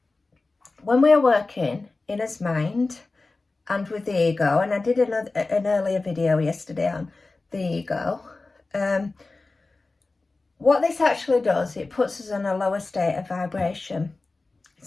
when we are working in his mind and with the ego, and I did an earlier video yesterday on the ego, what this actually does, it puts us in a lower state of vibration.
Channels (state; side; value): quieter; right; 3.5 dB